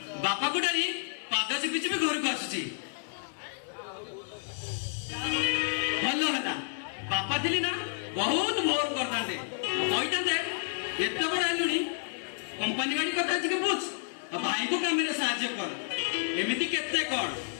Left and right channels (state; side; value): silent; right; digital silence